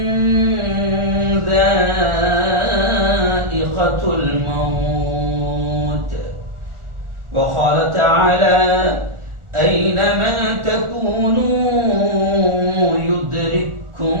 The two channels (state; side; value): late; left; 1.4 ms